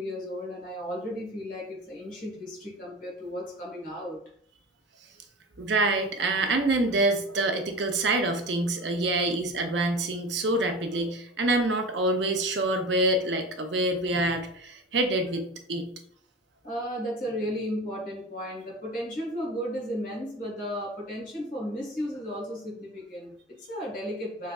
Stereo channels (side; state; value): both; normal; correlation 0.32